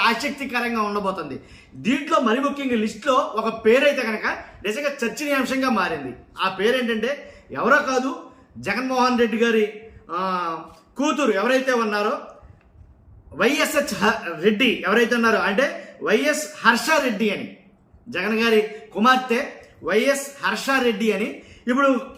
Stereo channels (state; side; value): identical; both; correlation 1.00